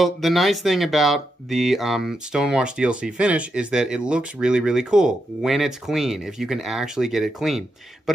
the nice thing about the Stonewash DLC finish is that it looks really, really cool when it's clean, if you can actually get it clean. But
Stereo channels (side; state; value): both; normal; correlation 0.84